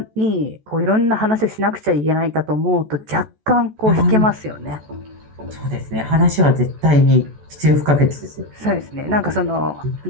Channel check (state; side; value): late; left; 14 ms